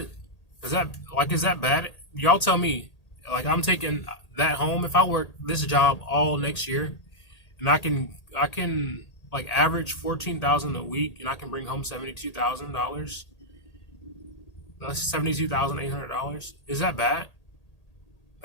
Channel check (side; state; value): right; late; 1.8 ms